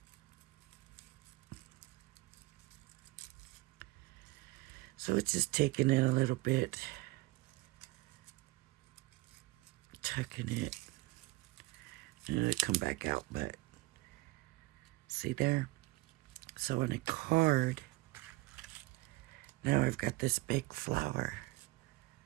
So it's just taking it a little bit, tucking it, and it'll come back out, but see there? So on a card, now I've got this big flower.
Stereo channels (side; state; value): left; quieter; 21.4 dB